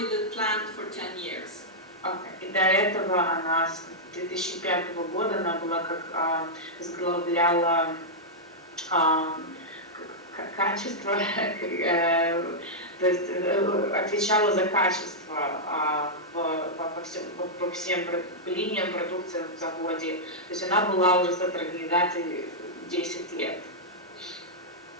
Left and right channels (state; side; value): normal; both; correlation -0.08